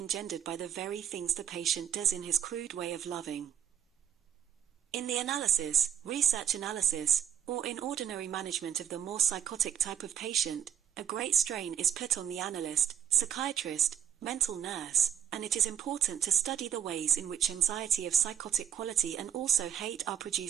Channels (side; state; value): left; quieter; 9.6 dB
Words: by the very things the patient does in his crude way of loving. In the analysis, research analysis, or in ordinary management of the more psychotic type of patient, a great strain is put on the analyst, psychiatrist, mental nurse, and it is important to study the ways in which anxiety of psychotic quality and also hate are